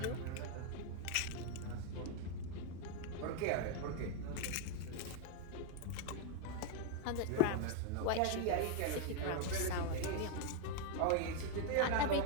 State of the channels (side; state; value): both; different; correlation 0.01